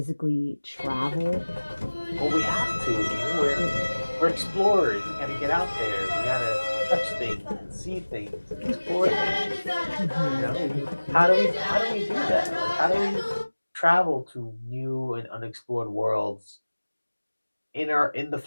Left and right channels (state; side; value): inverted; both; correlation -1.00